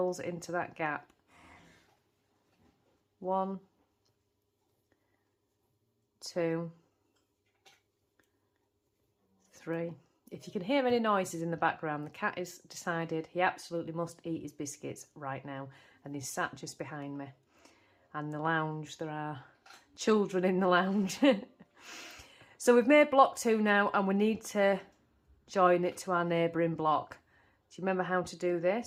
into that gap. 1, 2, 3. If you can hear any noises in the background, the cat has decided he absolutely must eat his biscuits right now, and he's sat just behind me. And the lounge, there are children in the lounge. So we've made block 2 now, and we need to join it to our neighbouring block. Do you remember how to do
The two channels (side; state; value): both; identical; correlation 1.00